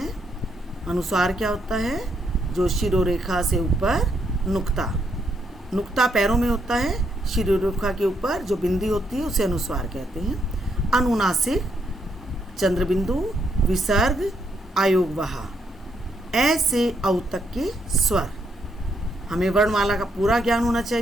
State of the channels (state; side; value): normal; both; correlation 0.76